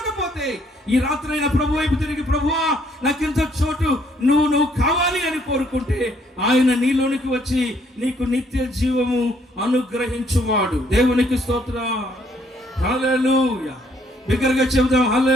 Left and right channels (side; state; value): both; normal; correlation 0.67